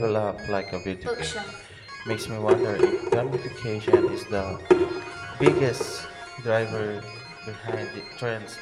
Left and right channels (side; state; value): both; identical; correlation 1.00